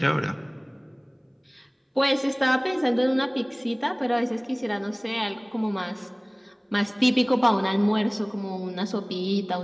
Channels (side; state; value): both; identical; correlation 1.00